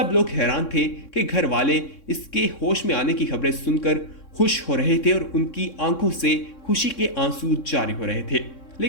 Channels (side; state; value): right; late; 3.6 ms